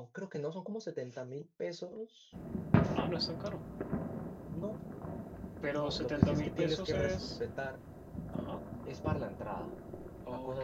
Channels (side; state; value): both; identical; correlation 1.00